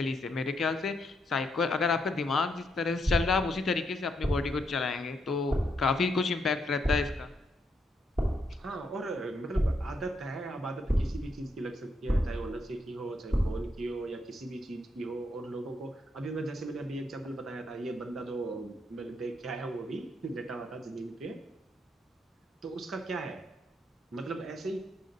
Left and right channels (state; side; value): normal; both; correlation 0.78